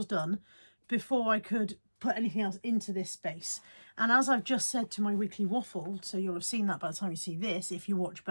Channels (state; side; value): inverted; both; correlation -1.00